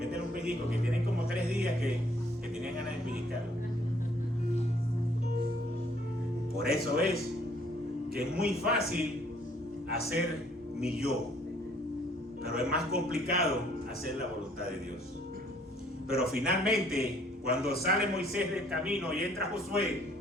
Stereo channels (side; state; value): both; normal; correlation 0.62